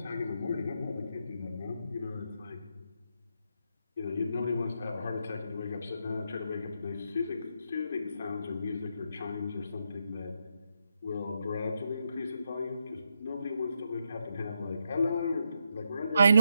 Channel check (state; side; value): inverted; both; correlation -0.82